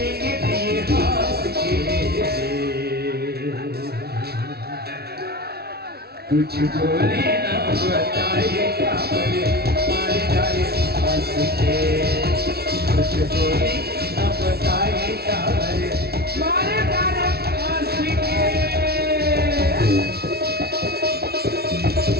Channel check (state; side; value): late; left; 0.46 ms